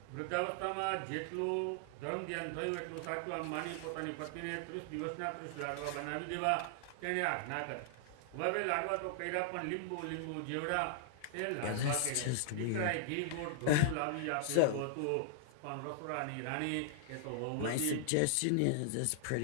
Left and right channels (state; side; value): different; both; correlation -0.01